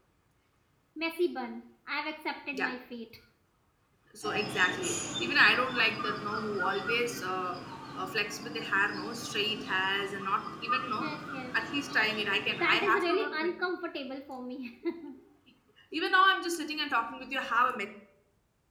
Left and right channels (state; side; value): identical; both; correlation 1.00